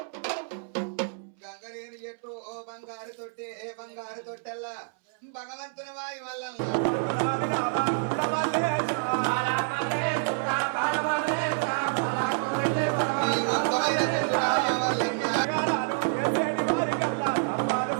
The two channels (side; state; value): left; silent; 59 dB below the other